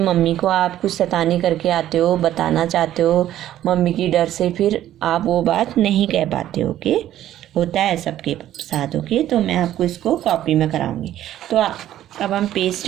को आप कुछ शैतानी करके आते हो, बताना चाहते हो, मम्मी की डर से फिर आप वो बात नहीं कह पाते। ओके, होता है सबके साथ। ओके, तो मैं आपको इसको कॉपी में कराऊंगी। तो अब हम पेज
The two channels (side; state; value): left; quieter; 12.5 dB